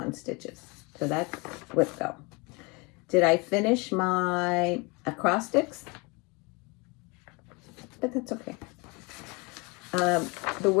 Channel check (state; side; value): quieter; right; 28.4 dB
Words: Stitches. So that's WIPGO. Did I finish my acrostics? But that's okay. The